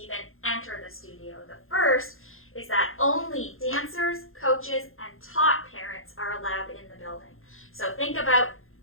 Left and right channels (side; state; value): right; late; 0.60 ms